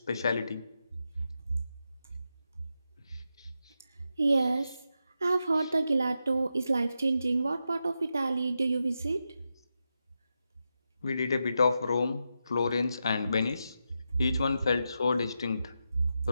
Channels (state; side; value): inverted; both; correlation -0.87